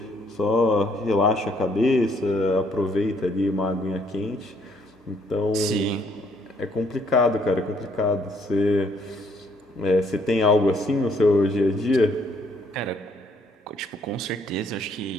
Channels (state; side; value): normal; both; correlation 0.67